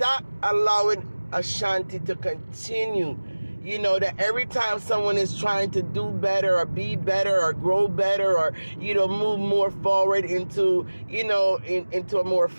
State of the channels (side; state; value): both; inverted; correlation -1.00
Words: allowing Ashanti to continue, that every time someone is trying to do better or be better or grow better or, move more forward into, into a more